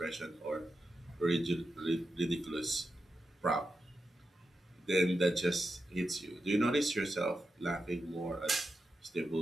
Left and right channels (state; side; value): normal; both; correlation 0.89